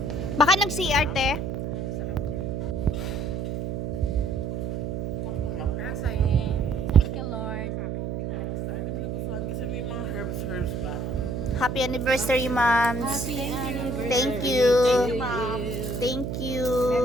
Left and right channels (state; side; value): noise; right; hum, 3 dB below the sound